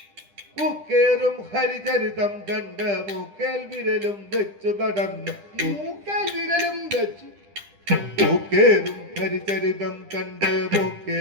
പൂക്കേറും ഹരിചരിതം കണ്ട് മൂക്കേൽ വിരലും വെച്ചു നടന്നു പൂക്കൽ വിരലും വെച്ചു പൂക്കേറും ഹരിചരിതം കണ്ട്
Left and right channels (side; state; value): left; late; 10 ms